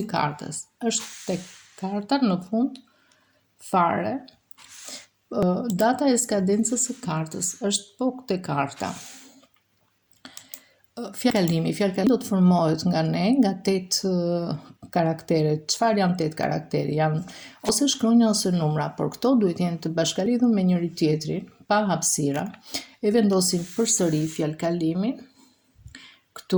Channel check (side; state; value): both; identical; correlation 1.00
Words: i kartës është tek karta në fund fare. Data e skadencës së kartës është po te karta. Fjalkalimi do të formohet nga ne, nga 8 karaktere. Çfarë janë 8 karaktere? Janë ose shkronja ose numra, por këto duhet jenë të bashkalidhur me njëri tjetrin, pa hapësira. E vendosim përsëri fjalkalimin.